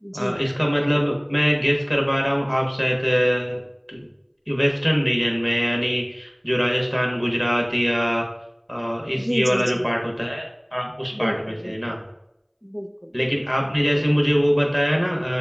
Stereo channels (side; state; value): both; identical; correlation 1.00